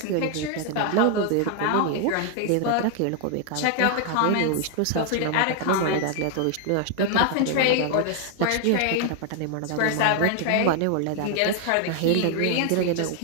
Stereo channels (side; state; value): both; different; correlation 0.00